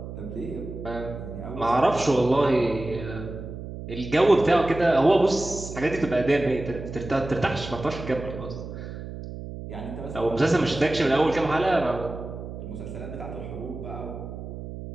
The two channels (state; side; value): noise; right; hum, 10 dB below the sound